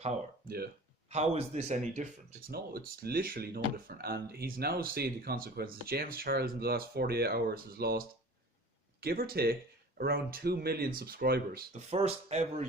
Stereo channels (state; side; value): normal; both; correlation 0.42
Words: Yeah. How is this any different? It's literally no different. And he's now seeing the consequences. James Charles in the last 48 hours has lost, give or take, around 2 million subscribers. The first ever